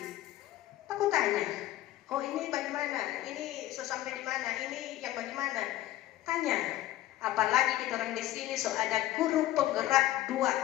Aku tanya, oh ini bagaimana, ini sampai di mana, ini yang bagaimana, tanya. Apalagi kita orang di sini ada guru penggerak 2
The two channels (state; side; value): quieter; right; 14.7 dB